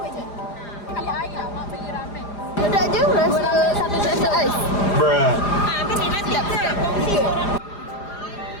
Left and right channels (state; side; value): late; right; 4.9 ms